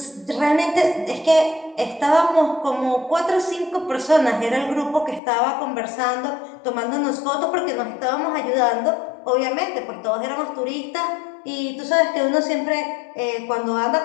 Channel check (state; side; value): drops out; right; at 5.2 s